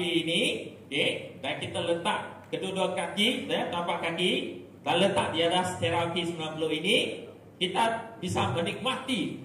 ini, okay, dan kita letak kedua-dua kaki, ya, tapak kaki, dan letak di atas terapi 90 ini, kita bisa menikmati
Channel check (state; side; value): identical; both; correlation 1.00